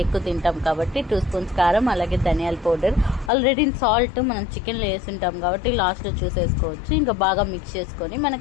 ఎక్కువ తింటాం కాబట్టి 2 spoons కారం, అలాగే ధనియాల పౌడర్, ఆల్రెడీ సాల్ట్ మనం చికెన్లో వేసుంటాం కాబట్టి లాస్ట్లో చూసేసుకోవచ్చు. ఇంకా బాగా మిక్స్ చేసుకొని మన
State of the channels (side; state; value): right; drops out; at 3.3 s